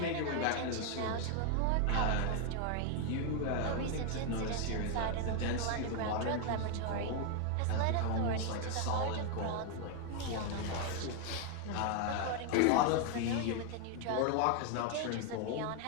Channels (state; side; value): different; both; correlation 0.01